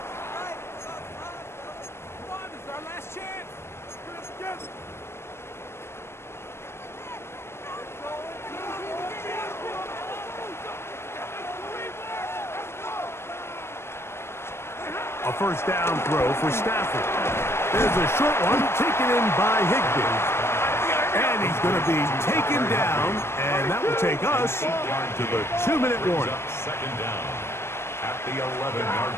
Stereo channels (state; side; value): late; right; 0.12 ms